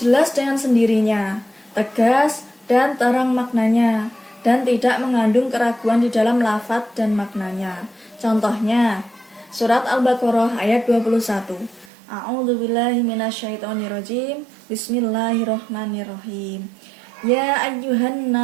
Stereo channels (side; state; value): left; drops out; at 11.9 s